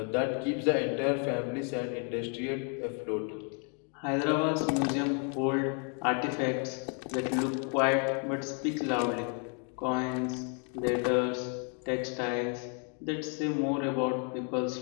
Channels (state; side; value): quieter; right; 39.5 dB